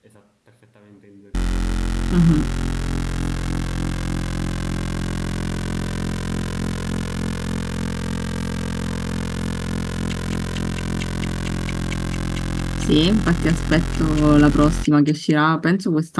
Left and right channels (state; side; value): identical; both; correlation 1.00